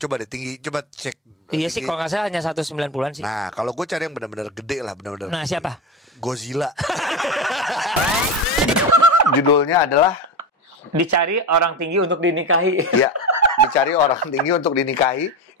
deh coba cek. Iya sih, kalau nggak salah hanya 190-an sih. Nah, kalau gue cari yang benar-benar gede lah, benar-benar. Nah, siapa? Godzilla. Judulnya adalah Dicari Orang Tinggi Untuk Dinikahi. Iya, Dicari Orang Tinggi Untuk Dinikahi.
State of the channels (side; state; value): both; normal; correlation 0.21